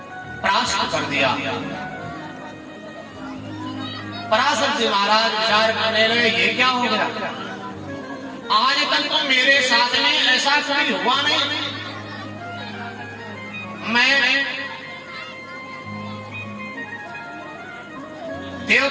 परास्त कर दिया। पराशर जी महाराज विचार करने लगे, ये क्या हो गया? आज तक तो मेरे साथ में ऐसा कभी हुआ नहीं। मैं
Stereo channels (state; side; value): identical; both; correlation 1.00